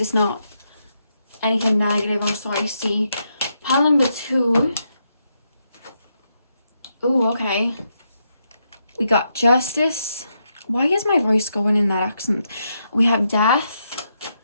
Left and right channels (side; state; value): both; inverted; correlation -0.81